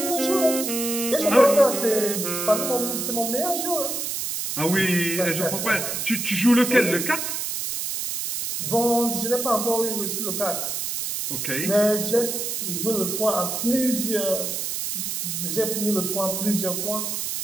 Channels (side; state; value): right; noise; hiss, 3 dB below the sound